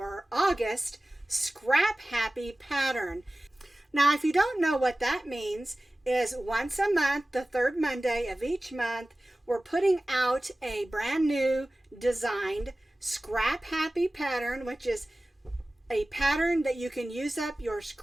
August Scrap Happy pattern. Now if you don't know what that means, is once a month, the third Monday of each month, we're putting out a brand new designed Scrap Happy pattern, which is a pattern that you can use up your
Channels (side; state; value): both; normal; correlation 0.97